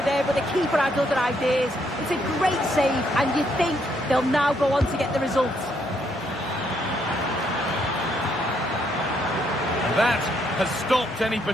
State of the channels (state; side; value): normal; both; correlation 0.73